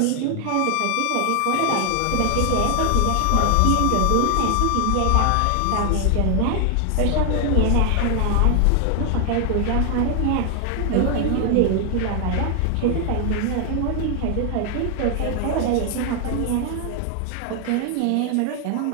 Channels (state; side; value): different; both; correlation 0.00